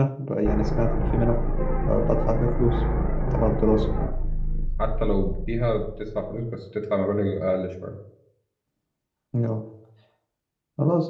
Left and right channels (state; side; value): identical; both; correlation 1.00